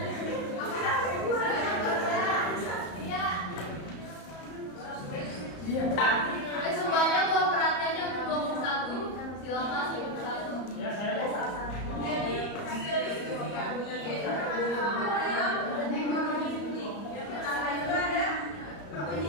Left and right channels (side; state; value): right; late; 34 ms